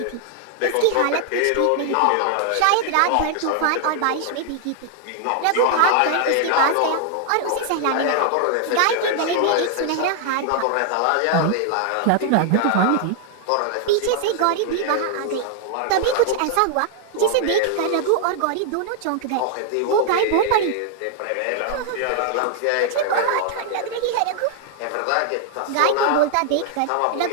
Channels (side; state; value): both; different; correlation 0.00